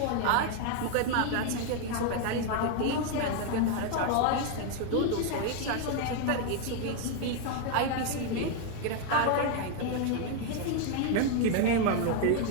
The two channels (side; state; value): both; different; correlation 0.01